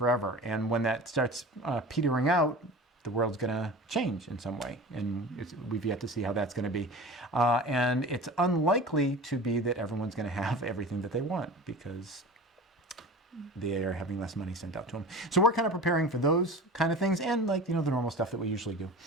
And when that starts petering out, the world's going to change in some way. And we've yet to see how that's going to be. And it's unlikely to be that everyone's going to have everything that they want, because they are having less money sent out to them. So we're kind of preparing for those kind of things, and the normal stuff that we usually do.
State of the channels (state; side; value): normal; both; correlation 0.36